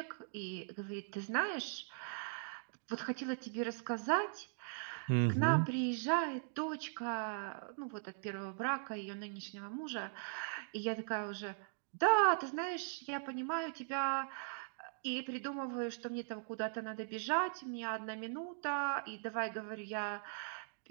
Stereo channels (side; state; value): left; silent; digital silence